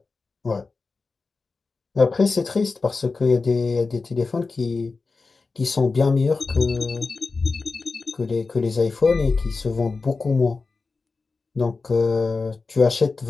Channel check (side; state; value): right; quieter; 4.1 dB